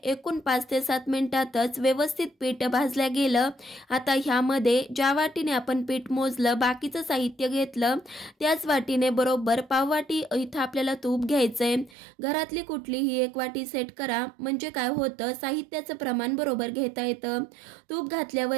एकूण 5 ते 7 मिनिटातच व्यवस्थित पीठ भाजल्या गेलं. आता ह्यामध्ये ज्या वाटीने आपण पीठ मोजलं, बाकीचं साहित्य घेतलं, त्याच वाटीने बरोबर पाव वाटी इथं आपल्याला तूप घ्यायचंय. घरातली कुठलीही 1 वाटी सेट करा, म्हणजे काय होतं, साहित्याचं प्रमाण बरोबर घेता येतं. तूप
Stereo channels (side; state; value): left; drops out; at 12.0 s